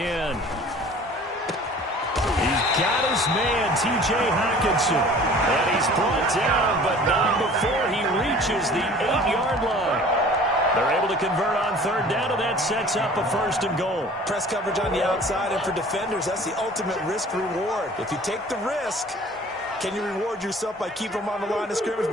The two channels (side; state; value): both; normal; correlation 0.47